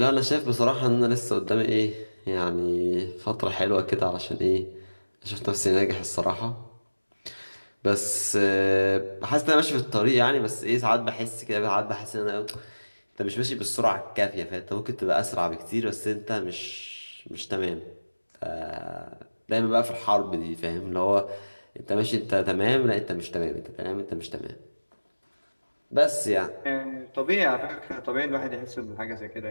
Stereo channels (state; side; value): inverted; both; correlation -1.00